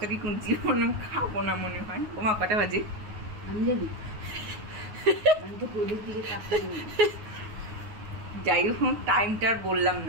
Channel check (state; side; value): late; left; 9.6 ms